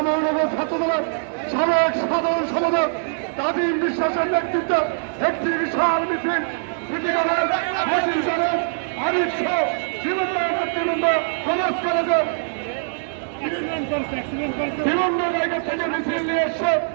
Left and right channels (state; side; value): silent; left; digital silence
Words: মহানগর ছাত্রদলের সাবেক সাধারণ সম্পাদক তাজিম বিশ্বাসের নেতৃত্বে একটি বিশাল মিছিল সিটিকলের মসজিদের আরিফ সহ বিভিন্ন নেতৃবৃন্দ সমাজ কলেজের বিভিন্ন জায়গা থেকে মিছিল নিয়ে এসছে।